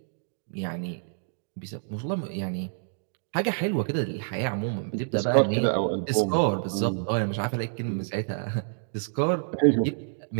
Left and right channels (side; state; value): left; silent; digital silence